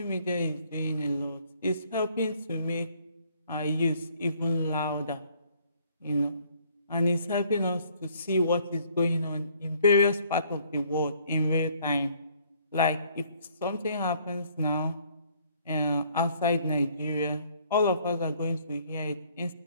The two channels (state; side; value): inverted; both; correlation -0.62